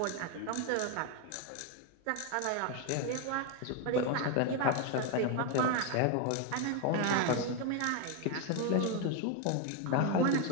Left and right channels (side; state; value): both; different; correlation 0.01